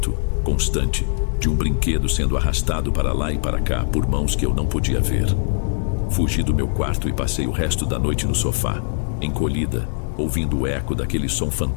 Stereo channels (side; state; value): right; silent; 65 dB below the other